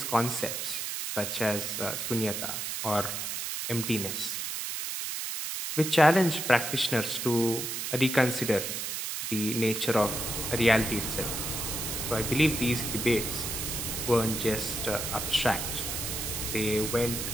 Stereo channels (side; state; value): right; noise; hiss, 3 dB below the sound